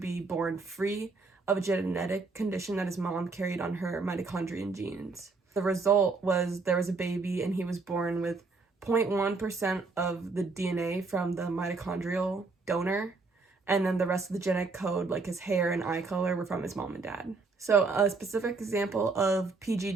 be born free of a genetic condition that his mom carried on her mitochondrial genes. The result was there was a baby and he was born with 0.1% of the DNA from the mitochondrial donor, and then the rest of the genetic code, like his hair and eye color, were from his mom and dad. So a specific example of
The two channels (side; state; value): left; quieter; 4.0 dB